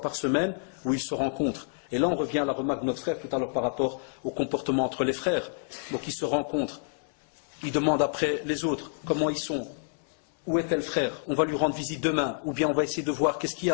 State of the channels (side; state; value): right; silent; 59 dB below the other